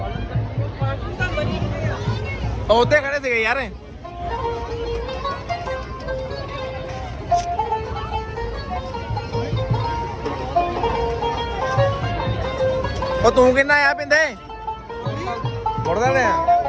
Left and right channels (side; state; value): both; identical; correlation 1.00